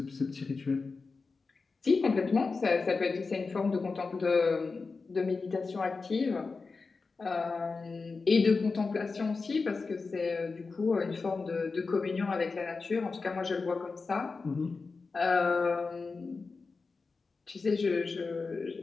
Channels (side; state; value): right; quieter; 4.3 dB